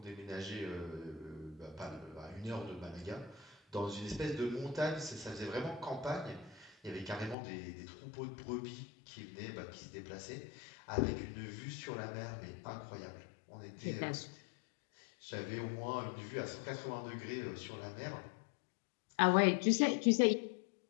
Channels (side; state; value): right; drops out; at 7.4 s